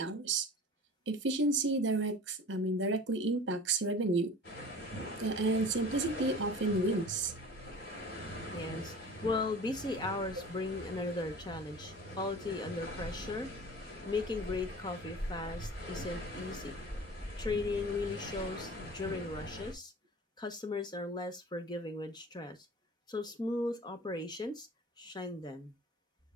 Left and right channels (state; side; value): normal; both; correlation 0.40